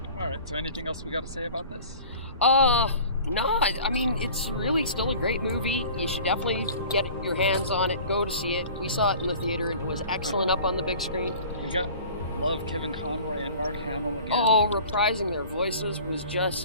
Alright, so anything else we got to say about this? No, I mean, it's really still a great movie. You should definitely get your hands on it, go to see it. We saw it in the theater and it was excellent up on the big screen. We love Kevin Conroy and Mark Hamill again. Oh, reprising their voices was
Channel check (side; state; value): both; inverted; correlation -0.44